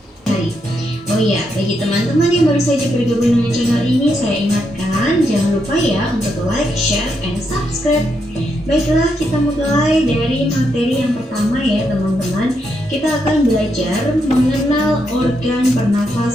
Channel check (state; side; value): normal; both; correlation 0.80